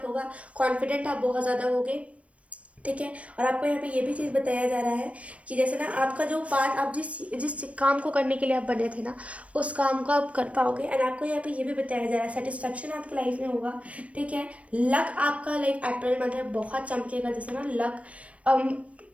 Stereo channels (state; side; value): late; left; 0.064 ms